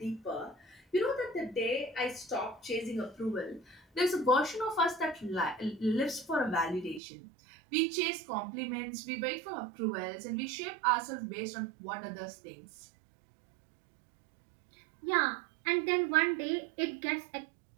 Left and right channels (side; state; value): left; drops out; at 7.0 s